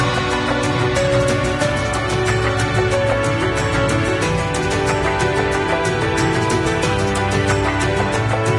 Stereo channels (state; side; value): identical; both; correlation 1.00